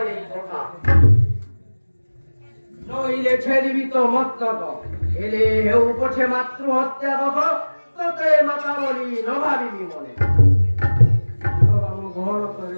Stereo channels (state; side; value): inverted; both; correlation -1.00